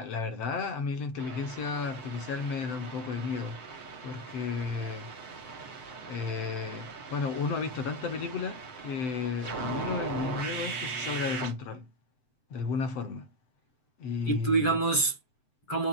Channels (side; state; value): right; late; 7.8 ms